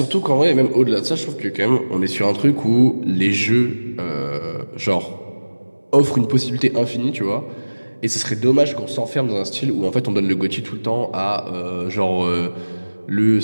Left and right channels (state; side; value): inverted; both; correlation -1.00